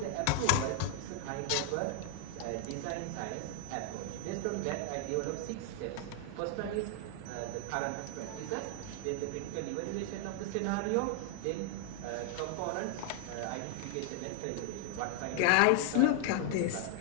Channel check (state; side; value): different; both; correlation 0.00